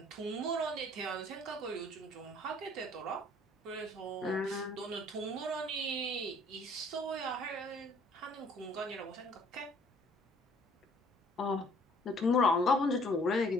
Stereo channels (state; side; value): normal; both; correlation 0.58